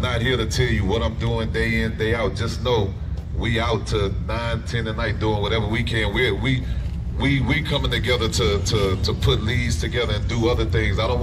not here to tell you what I'm doing day in, day out. Just know we out to 9, 10 at night doing whatever we can. We coming together to put leads together and do other things. I don't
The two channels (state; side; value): identical; both; correlation 1.00